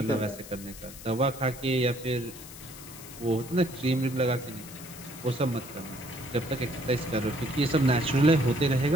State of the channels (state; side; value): noise; left; hiss, 15 dB below the sound